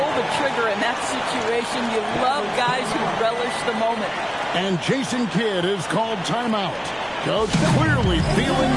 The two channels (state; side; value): identical; both; correlation 1.00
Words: the trigger in that situation. You love guys who relish the moment. And Jason Kidd is called timeout. Coach clearly feeling